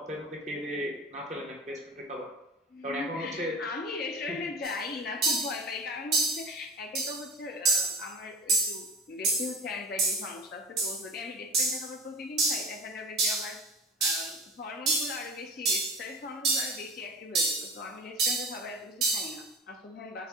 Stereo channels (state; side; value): normal; both; correlation 0.33